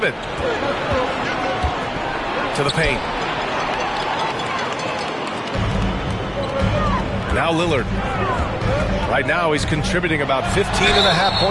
it. To the paint. Now Lillard. Right now he's contributing about 15.5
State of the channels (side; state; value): both; identical; correlation 1.00